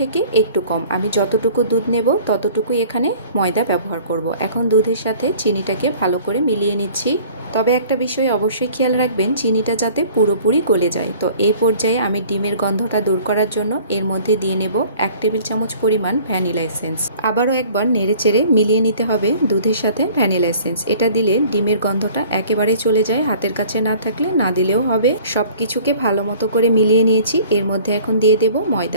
একটু কম। আমি যতটুকু দুধ নেব ততটুকুই এখানে ময়দা ব্যবহার করব। এখন দুধের সাথে চিনিটাকে ভালো করে মিলিয়ে নিচ্ছি। তবে একটা বিষয় অবশ্যই খেয়াল রাখবেন, চিনিটা যাতে পুরোপুরি গলে যায়। তো এই পর্যায়ে আমি ডিমের গন্ধটা দূর করার জন্য এর মধ্যে দিয়ে নেব 1 টেবিল চামচ পরিমাণ ভ্যানিলা এসেন্স। আবারও একবার নেড়েচেড়ে মিলিয়ে নিতে হবে দুধের সাথে ভ্যানিলা এসেন্স। এটা দিলে ডিমের গন্ধটা একেবারেই চলে যায়, হাতের কাছে না থাকলে না দিলেও হবে। সব কিছুকে ভালো মতো করে মিলিয়ে নিয়েছি। এর মধ্যে এখন দিয়ে দেব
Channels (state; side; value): inverted; both; correlation -0.50